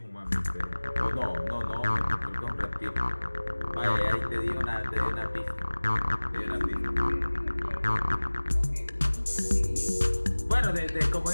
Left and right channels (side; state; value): both; inverted; correlation -1.00